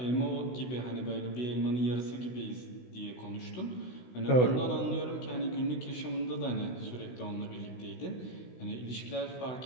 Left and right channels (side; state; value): right; late; 16 ms